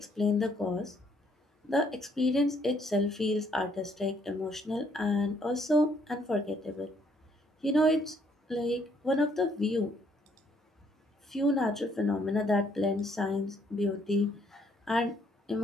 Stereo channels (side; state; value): both; normal; correlation 0.68